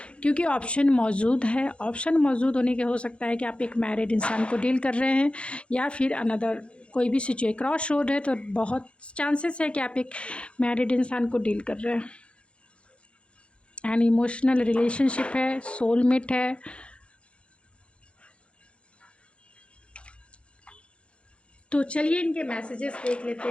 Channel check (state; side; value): late; right; 0.059 ms